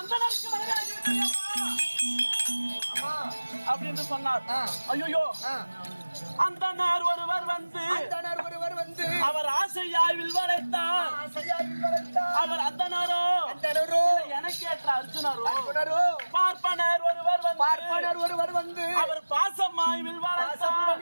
மனைவியாகிவிட்டாய் அப்படின்னு சொன்னார். ஐயோ அந்தனர் ஒருவர் வந்து அவர் ஆசையாவில் வளைத்தார் அவர் அந்தனரோ எனக்கேற்ற அர்ஜுனரோ பார்ப்பனர் ஒருவர் வந்து அவர் பாசமாய்வில்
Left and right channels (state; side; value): inverted; both; correlation -1.00